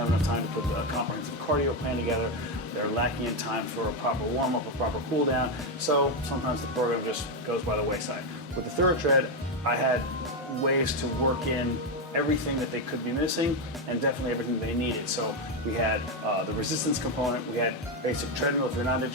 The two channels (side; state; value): both; normal; correlation 0.07